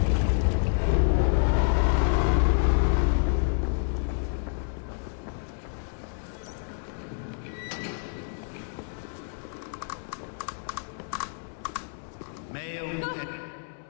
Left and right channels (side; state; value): right; silent; 59 dB below the other